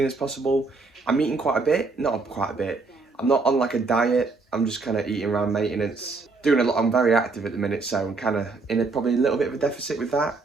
as possible. I'm eating quite a bit, not quite a bit. I'm not on like a diet. I'm just kind of eating around maintenance. Doing a lot. I'm very active at the minute, so I'm kind of in probably a little bit of a deficit with that.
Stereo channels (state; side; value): quieter; left; 4.0 dB